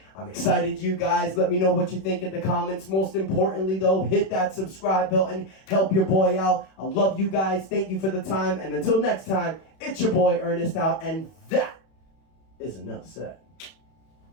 I'm excited, you guys. Let me know what you think in the comments. Most importantly, though, hit that subscribe button. Help your boy out. I love you guys. Thank you for the time. And until next time, it's your boy Ernest out. And that is enough said.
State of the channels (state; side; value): late; right; 31 ms